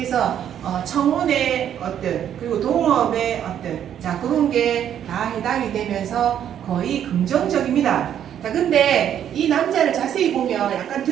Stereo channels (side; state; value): left; quieter; 9.8 dB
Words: 청운의 어떤 그리고 동업의 어떤 자 그런 게 다 해당이 되면서 거의 긍정적입니다. 자 근데 이 남자를 자세히 보면 약간